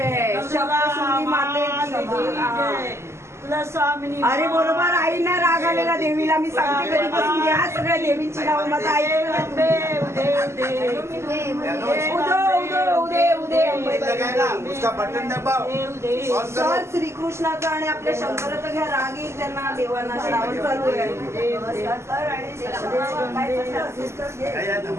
सप्तशृंगी माते की जय. अरे बरोबर आईना राग आलेला देवीला. मी सांगते कधीपासून घ्या सगळ्या देवींची नाव माझा आई उसका बटन दबाव. सर श्रीकृष्णाचा आणि आपल्या शंकराचा घ्या राग येईल त्यांना देवांना. श्रावण चालू आहे. सर आणि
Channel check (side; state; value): left; late; 0.13 ms